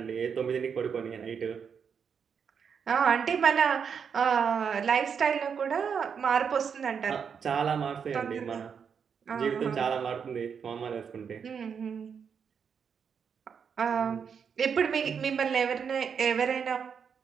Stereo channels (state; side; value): quieter; left; 6.8 dB